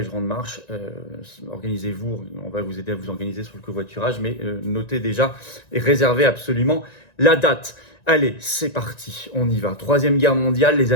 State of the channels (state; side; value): late; right; 1.9 ms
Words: grande marche. Organisez-vous, on va vous aider à vous organiser sur le covoiturage, mais notez déjà et réservez absolument la date. Allez, c'est parti, on y va. Troisième guerre mondiale, les